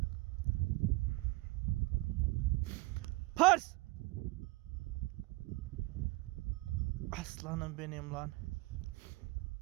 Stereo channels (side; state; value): left; quieter; 22.4 dB